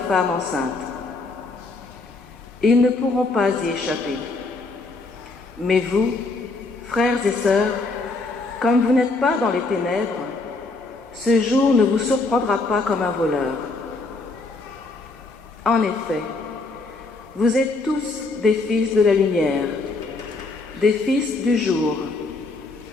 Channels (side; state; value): right; quieter; 3.5 dB